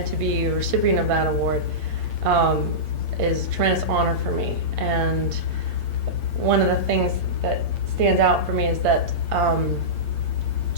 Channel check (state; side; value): late; left; 8.6 ms